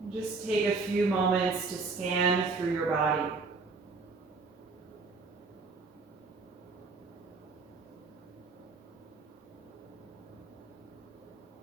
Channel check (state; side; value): quieter; left; 4.2 dB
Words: And just take a few moments to scan through your body.